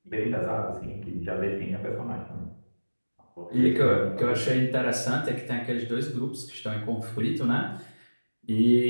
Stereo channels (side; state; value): both; inverted; correlation -1.00